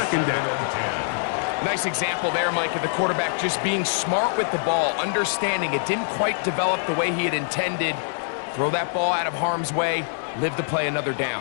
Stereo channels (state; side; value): silent; right; 62 dB below the other